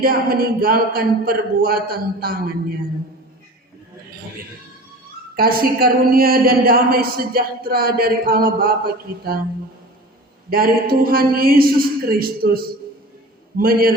meninggalkan perbuatan tangannya. Kasih karunia dan damai sejahtera dari Allah Bapa kita, dari Tuhan Yesus Kristus,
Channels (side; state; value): both; normal; correlation 0.38